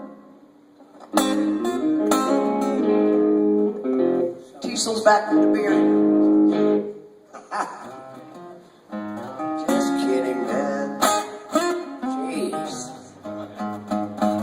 Tiesel's back from the beer. Just kidding, man. Jeez.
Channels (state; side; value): identical; both; correlation 1.00